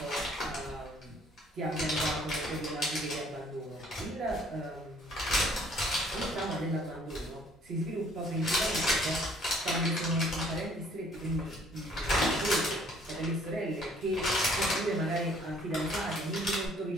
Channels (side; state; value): both; normal; correlation 0.59